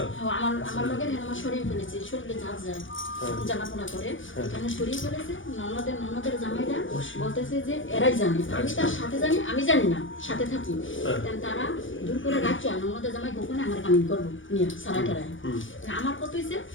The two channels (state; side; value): late; right; 0.57 ms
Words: আমার লগে আমার শরীর ফেলেছে শরীরে চাপ যায় জানাপনা করে এখানে শরীর ফেলেছে ননদের জামাইরা বলতেছে যে এরাই জানে আমি তার সাথে জানি আমি জানি না সাথে থাকি তারা দূর করে রাখছে ননদের জামাই গোপনে আমার কামিং করবো নিয়ে সারা টারায় আমার কত হয়েছে